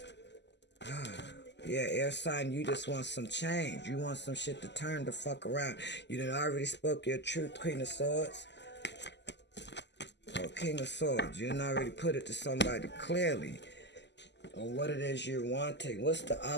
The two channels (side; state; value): right; late; 0.51 ms